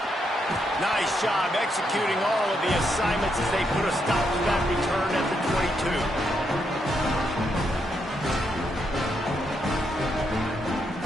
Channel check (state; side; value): normal; both; correlation 0.79